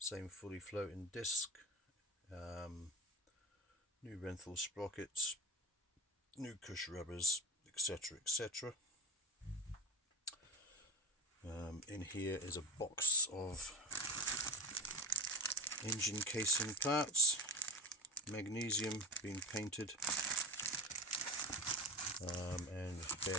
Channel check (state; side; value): normal; both; correlation 0.26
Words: fully floating disc, new Renthal sprockets, new cush rubbers, etc, etc. In here is a box of engine casing parts, magnesium being painted, and